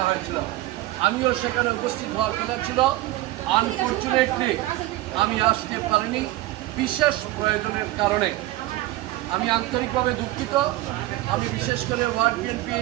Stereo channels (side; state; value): left; quieter; 17.0 dB